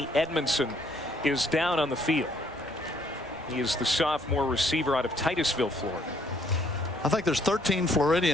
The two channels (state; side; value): normal; both; correlation 0.65